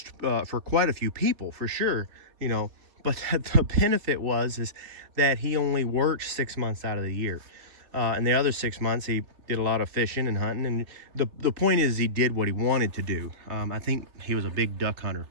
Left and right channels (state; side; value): late; left; 3.3 ms